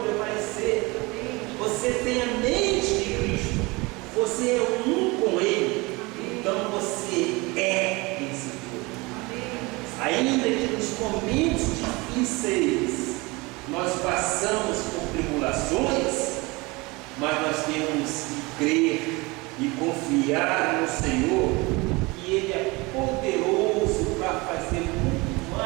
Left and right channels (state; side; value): quieter; left; 24.5 dB